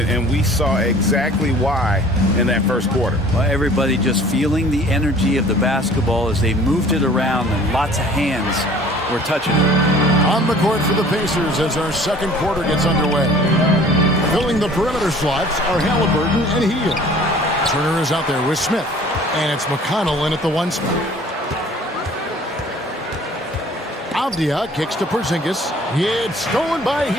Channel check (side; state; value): both; normal; correlation 0.50